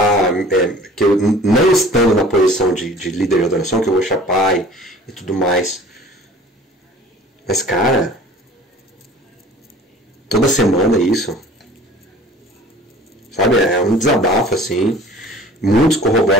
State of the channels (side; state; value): both; normal; correlation 0.46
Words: que eu não estando na posição de líder de adoração, que eu vou chapar e tudo mais. Mas, cara, toda semana isso. Sabe, é um desabafo, assim. Muitos